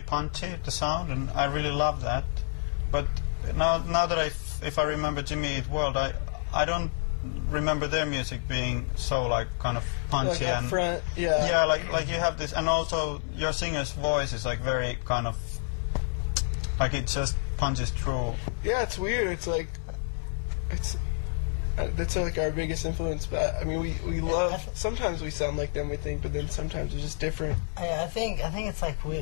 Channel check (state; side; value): silent; right; 59 dB below the other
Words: the sound, and I really love that. But now that if I remember Jimmy Eat World, I don't remember their music being so kind of punchy and front, you have this, and also your singer's voice is very kind of it just punches through. Yeah, it's weird. That's our biggest influence. But I mean, we love. Sometimes we sound like them, we think, but then sometimes we're just different. I think it's we